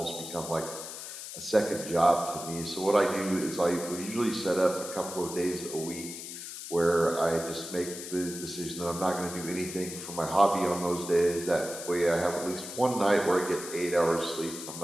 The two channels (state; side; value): noise; left; hiss, 10 dB below the sound